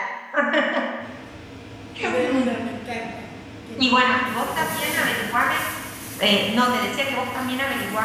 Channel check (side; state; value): both; identical; correlation 1.00